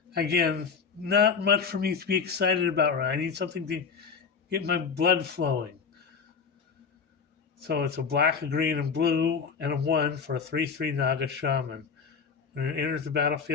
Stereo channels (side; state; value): right; quieter; 5.8 dB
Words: Again, not much for me to be excited about. Right? I need something to get my blood flowing. So it's a black, a green, and blue, and a 1 for a 3/3 Naga Shaman. When it enters the